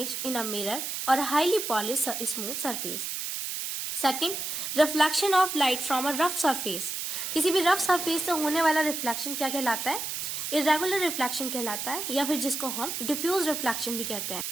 in a mirror or highly polished smooth surface. Second, reflection of light from a rough surface. किसी भी रफ सरफेस से होने वाला रिफ्लेक्शन क्या कहलाता है? इरेगुलर रिफ्लेक्शन कहलाता है, या फिर जिसको हम डिफ्यूज रिफ्लेक्शन भी कहते हैं।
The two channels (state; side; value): noise; right; hiss, 4 dB below the sound